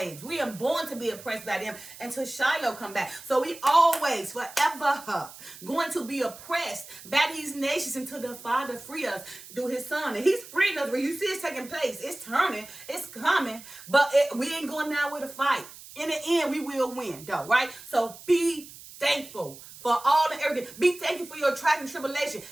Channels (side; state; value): right; noise; hiss, 17 dB below the sound